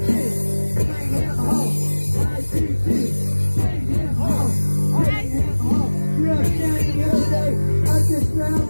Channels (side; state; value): both; inverted; correlation -1.00